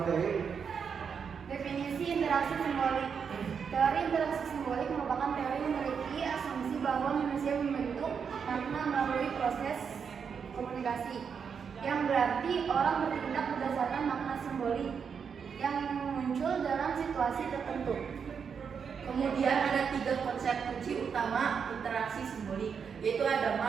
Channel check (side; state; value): left; quieter; 6.6 dB